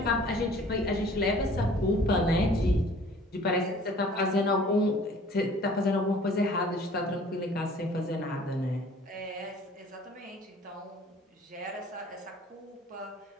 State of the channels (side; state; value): both; normal; correlation 0.51